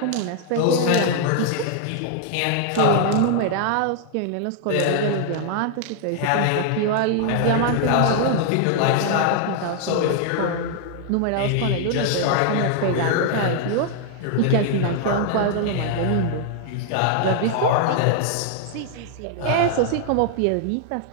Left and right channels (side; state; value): both; different; correlation 0.00